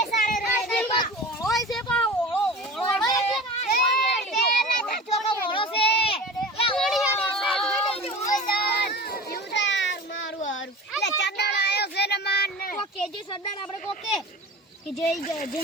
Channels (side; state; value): both; normal; correlation 0.35